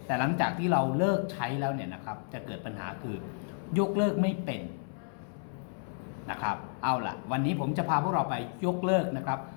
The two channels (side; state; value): right; silent; 57 dB below the other